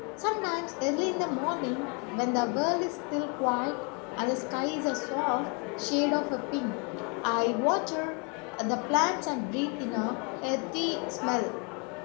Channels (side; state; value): right; quieter; 34.9 dB